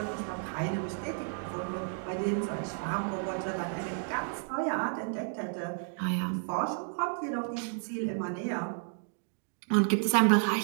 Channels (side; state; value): left; silent; 56 dB below the other